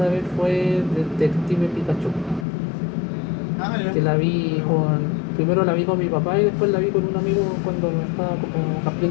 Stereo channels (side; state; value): right; drops out; at 2.5 s